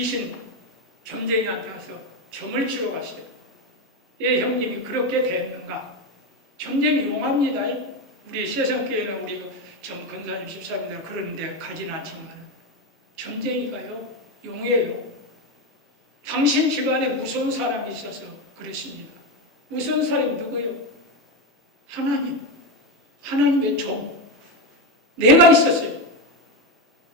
점쟁이한테 가서 점을 치러 갔어요. 예, 형님이 그렇게 됐는가? 점쟁이 용합니다. 우리 세상교회는 우리 점 근사님 집사님들 그런 데 가진 않지만 점쟁이가요 용해요. 당신 집안에 무서운 사람이 있어서 그랬습니다. 무서운 사람이 누구예요? 하나님. 하나님의 종. 내가 있었어요.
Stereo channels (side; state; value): both; normal; correlation 0.13